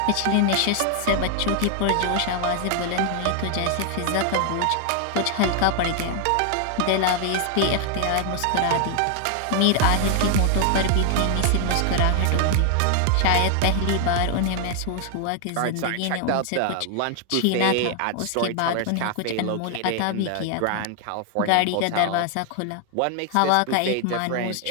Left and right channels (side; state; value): both; different; correlation 0.00